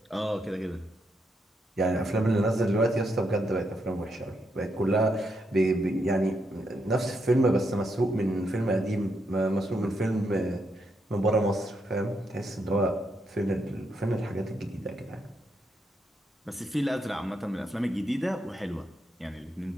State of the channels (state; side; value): normal; both; correlation 0.80